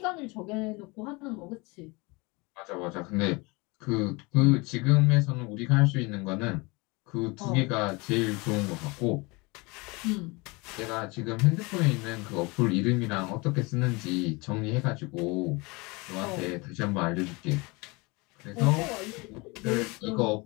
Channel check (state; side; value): quieter; right; 26.2 dB